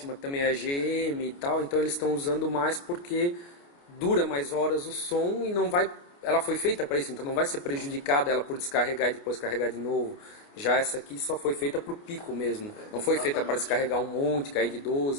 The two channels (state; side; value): late; right; 29 ms